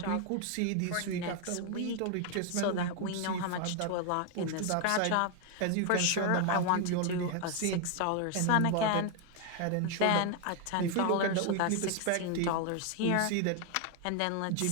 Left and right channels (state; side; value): different; both; correlation 0.01